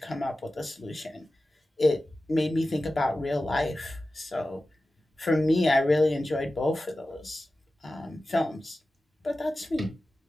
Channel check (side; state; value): both; normal; correlation 0.95